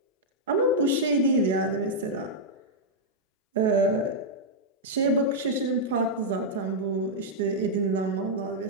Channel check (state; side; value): normal; both; correlation -0.05